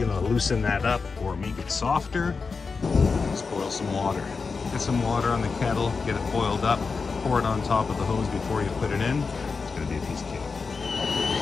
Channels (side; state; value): right; quieter; 4.7 dB